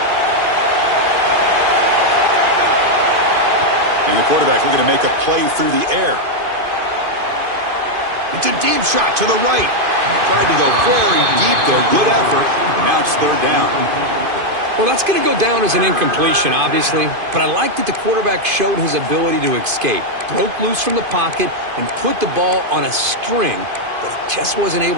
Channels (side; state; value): left; late; 2.5 ms